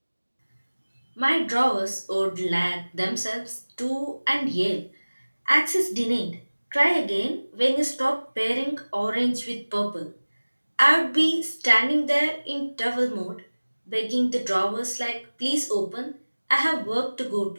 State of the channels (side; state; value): both; inverted; correlation -1.00